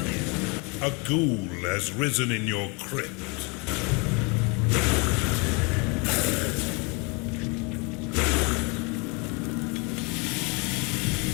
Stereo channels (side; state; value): right; quieter; 30.8 dB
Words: A ghoul has risen in your crypt.